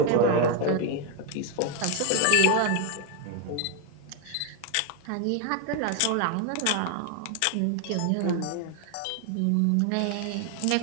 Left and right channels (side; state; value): both; different; correlation 0.01